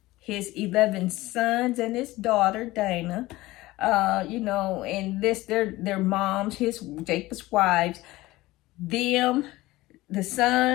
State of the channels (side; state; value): right; quieter; 18.5 dB